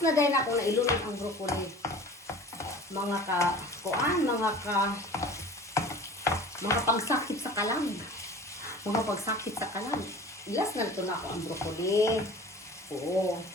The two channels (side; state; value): both; normal; correlation 0.41